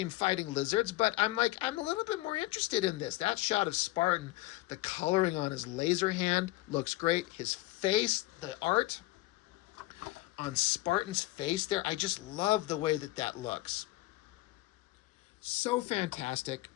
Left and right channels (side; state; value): right; quieter; 19.3 dB